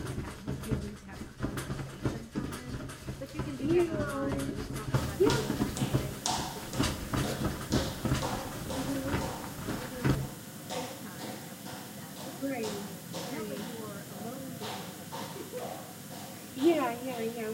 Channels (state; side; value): identical; both; correlation 1.00